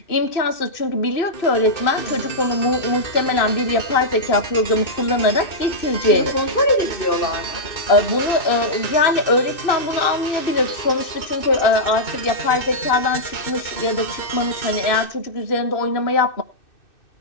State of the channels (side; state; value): right; late; 2.6 ms